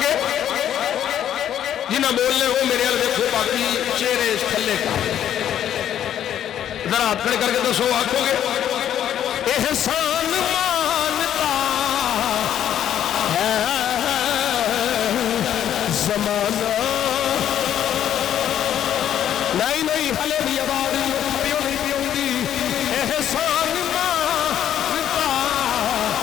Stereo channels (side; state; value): right; quieter; 10.4 dB